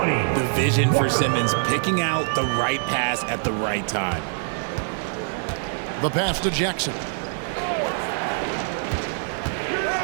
vision for Simmons, picking out the right pass at the right time. The pass to Jackson.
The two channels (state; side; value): silent; left; 55 dB below the other